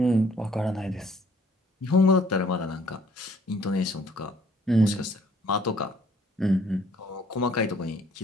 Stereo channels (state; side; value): normal; both; correlation 0.61